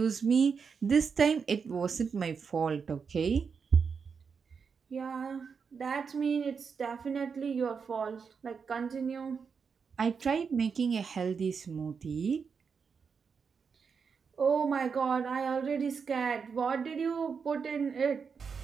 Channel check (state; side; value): quieter; left; 5.9 dB